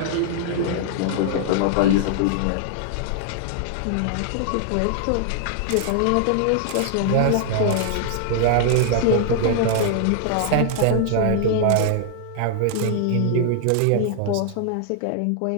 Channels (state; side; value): different; both; correlation -0.01